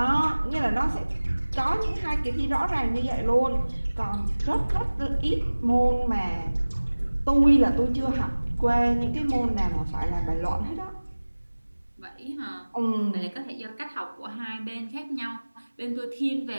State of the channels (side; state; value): both; inverted; correlation -1.00